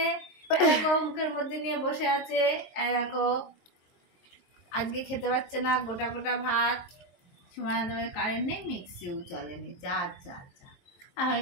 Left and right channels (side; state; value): right; late; 23 ms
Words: এরকম মুখের মধ্যে নিয়ে বসে আছে, এরকম আজকে খেতে পারছে না গোটা গোটা ভাত। সময় কারেন্ট নেই, মিক্সিও চলেনি, যা যা যা হয়ে